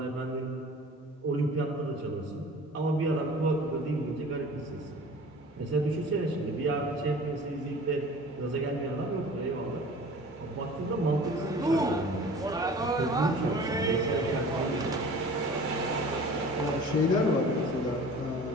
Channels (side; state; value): both; normal; correlation 0.43